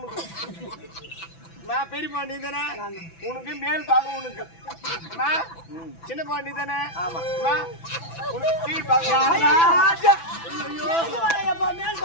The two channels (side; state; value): right; late; 6.0 ms